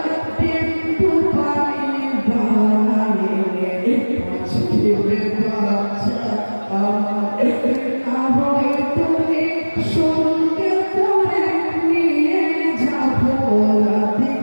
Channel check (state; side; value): inverted; both; correlation -1.00